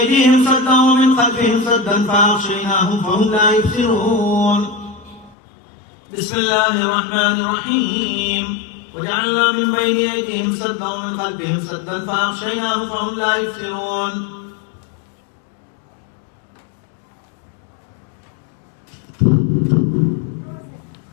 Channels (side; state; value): right; drops out; at 5.4 s